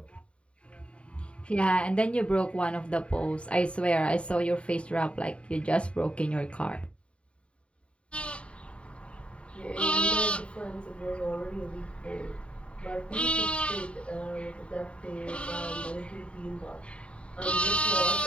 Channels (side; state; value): right; late; 0.059 ms